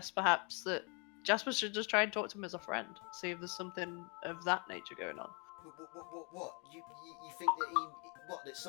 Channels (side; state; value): right; quieter; 34.2 dB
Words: perhaps that Jasper should just try and talk to him as a friend, see if there's something of that nature going on. What? You think that that